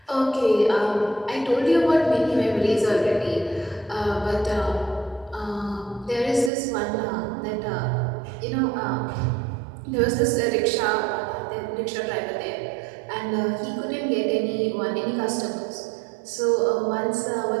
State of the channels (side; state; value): left; drops out; at 6.5 s